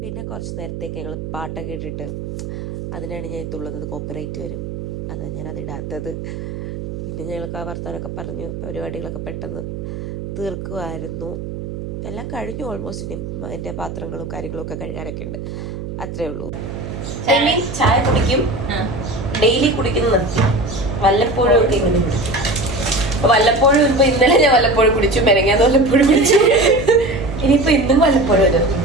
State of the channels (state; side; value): noise; right; hum, 8 dB below the sound